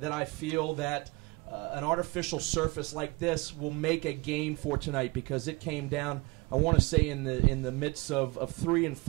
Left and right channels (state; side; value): quieter; left; 25.4 dB